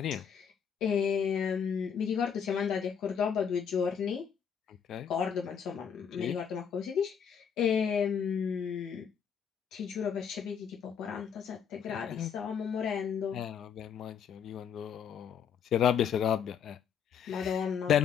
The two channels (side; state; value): right; quieter; 7.5 dB